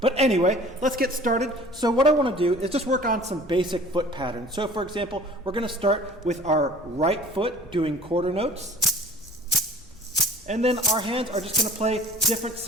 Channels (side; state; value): both; normal; correlation 0.47